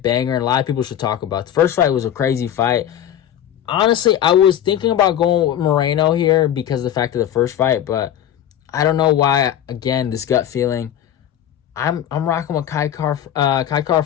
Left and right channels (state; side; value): quieter; right; 10.7 dB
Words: banger, and a lot of people should talk about. The first fight was a crazy fight. Honestly, I was thinking about going with Moreno here because of the fact of the first fight, but I don't know why. Again, this gut feeling. I'm rocking with Kai Kara